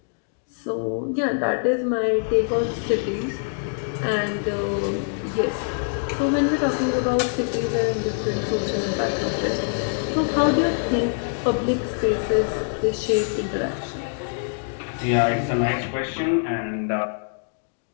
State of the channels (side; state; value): right; silent; digital silence